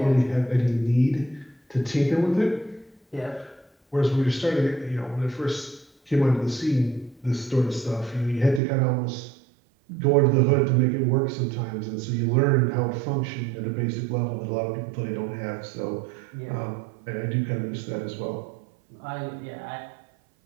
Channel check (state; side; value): drops out; left; at 8.6 s